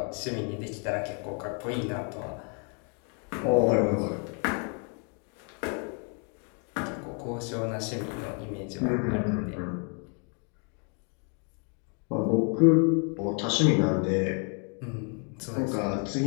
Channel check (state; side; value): quieter; right; 39.3 dB